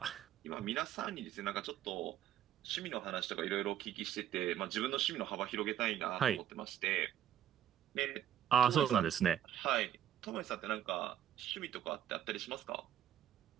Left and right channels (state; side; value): quieter; left; 10.6 dB